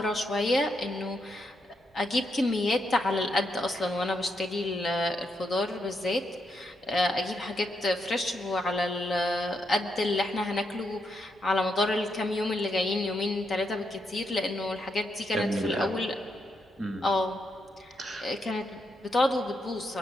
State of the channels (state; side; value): normal; both; correlation 0.80